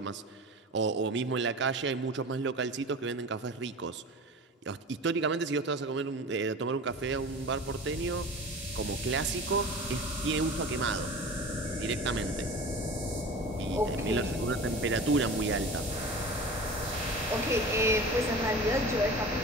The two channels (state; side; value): normal; both; correlation 0.36